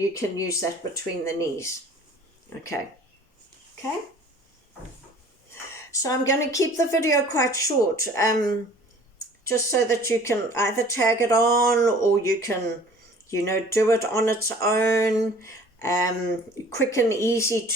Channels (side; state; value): both; normal; correlation 0.50